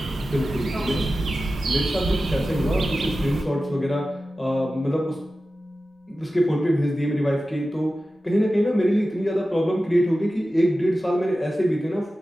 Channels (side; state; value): both; normal; correlation 0.94